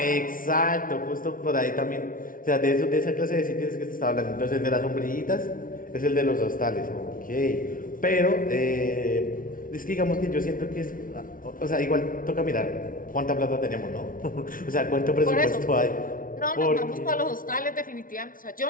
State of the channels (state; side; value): late; right; 0.40 ms